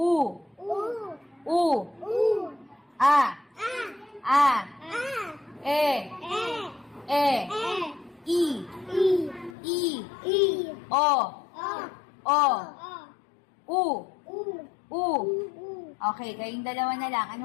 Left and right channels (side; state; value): right; drops out; at 9.6 s